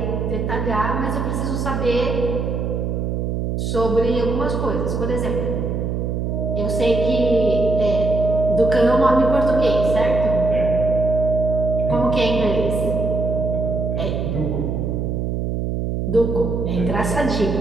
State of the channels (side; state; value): right; noise; hum, 1 dB below the sound